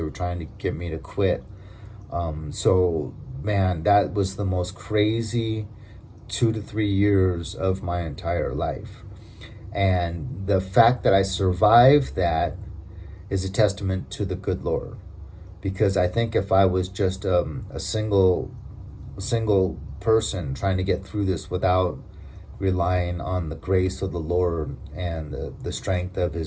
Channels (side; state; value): both; identical; correlation 1.00